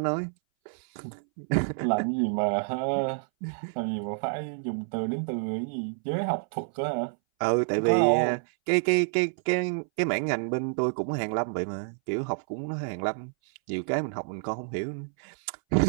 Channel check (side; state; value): left; silent; 59 dB below the other